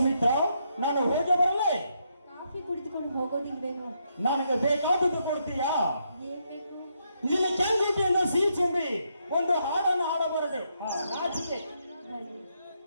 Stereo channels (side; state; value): both; inverted; correlation -0.78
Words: ನಾನು ಹೋಗಿ ಬರಲೇ? ಕಾಫಿ ಕುಡಿದುಕೊಂಡು ಹೋಗೋದಿಲ್ವೇನೋ? ನನಗೆ ಬೇಕಾದದ್ದು ಕೊಡ್ತೀಯಾ? ಏನ್ ಬೇಕು? ನಿನ್ನ ಕೆಂಗುಟಿಯಿಂದ ಸಿಹಿ ತುಂಬಿ ಒಂದು ಹಾಡನ್ನು ಹಾಡಬಾರದೆ? ನಾಚಿಕೆ ಬನ್ನಿ.